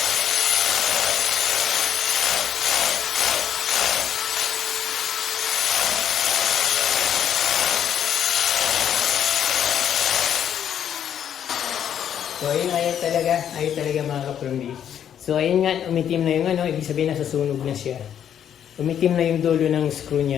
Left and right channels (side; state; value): right; quieter; 9.4 dB